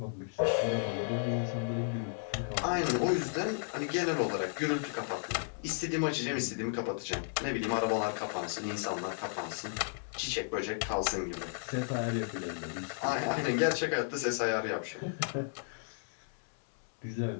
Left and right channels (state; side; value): silent; right; digital silence